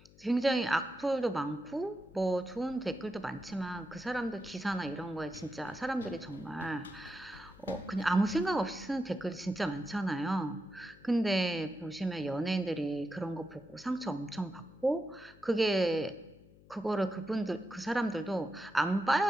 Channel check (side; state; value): left; noise; hum, 24 dB below the sound